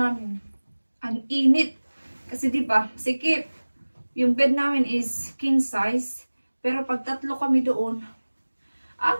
ang init. Kasi diba, sikip. Yung bed namin is king size. Pero pag tatlo kami doon, ang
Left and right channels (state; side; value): inverted; both; correlation -1.00